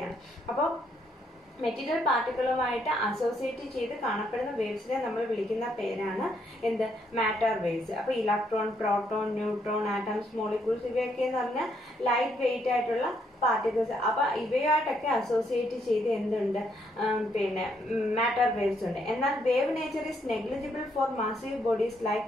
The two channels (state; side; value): normal; both; correlation 0.73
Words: അപ്പോൾ മെറ്റീരിയൽ പാർട്ടിക്കിളുമായിട്ട് അസോസിയേറ്റ് ചെയ്ത് കാണപ്പെടുന്ന വേവ്സിനെ നമ്മൾ വിളിക്കുന്ന പേരാണ് എന്ത്? Matter waves. അപ്പൊ electron, proton, neutron, atoms, molecules ഇവയൊക്കെ എന്ന് പറഞ്ഞാൽ ലൈറ്റ് വെയിറ്റ് ആയിട്ടുള്ള പാർട്ടിക്കിൾസ്. അപ്പൊ ഇവയായിട്ടൊക്കെ അസോസിയേറ്റ് ചെയ്ത് എന്തുണ്ട്? പിന്നെ മാറ്റർ വേവ്സ് ഉണ്ട്. എന്നാൽ wave nature is negligible for massive bodies like